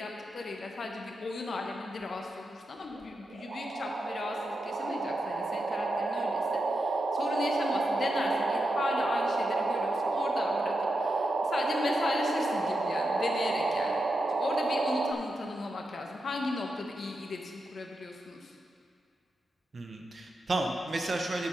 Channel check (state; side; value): normal; both; correlation 0.87